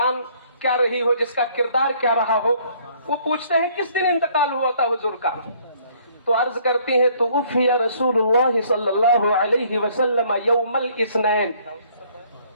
کیا رہی ہو، جس کا کردار کیا رہا ہو، وہ پوچھتے ہیں کس دن انتقال ہوا تھا حضور کا؟ تو عرض کرتی ہیں، توفی رسول اللہ صلی اللہ علیہ وسلم یوم الاثنین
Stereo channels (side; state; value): both; inverted; correlation -0.61